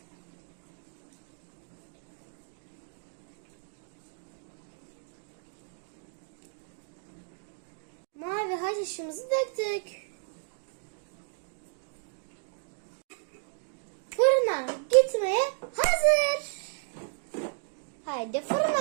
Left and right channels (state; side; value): silent; left; digital silence